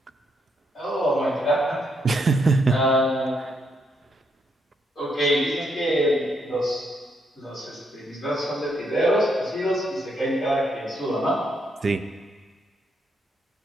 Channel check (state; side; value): normal; both; correlation 0.76